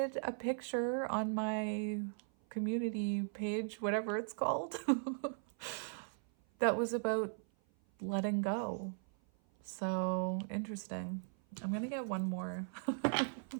a picture on my community page, whatever it's called, that was about letting go. So interesting. I'm going to get one more.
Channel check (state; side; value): silent; left; 52 dB below the other